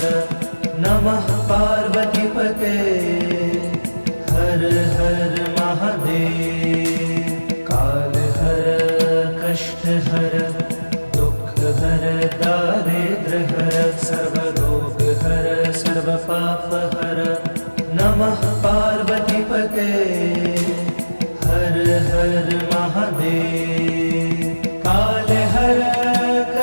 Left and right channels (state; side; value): inverted; both; correlation -1.00